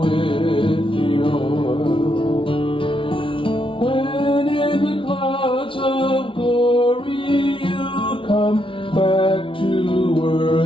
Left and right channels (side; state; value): right; late; 0.25 ms